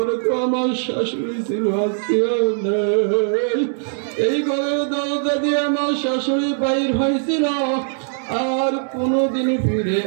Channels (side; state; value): left; silent; 65 dB below the other